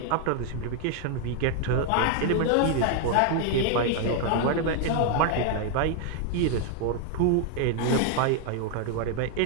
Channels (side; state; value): both; different; correlation 0.00